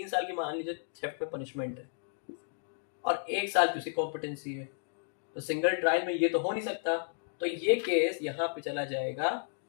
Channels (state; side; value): silent; right; digital silence